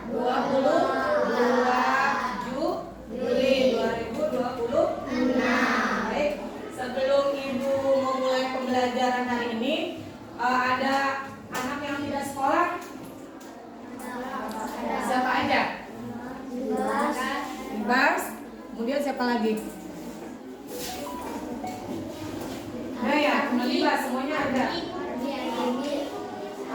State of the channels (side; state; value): both; identical; correlation 1.00